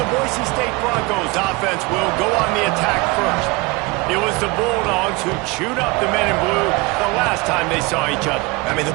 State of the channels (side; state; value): left; quieter; 25.3 dB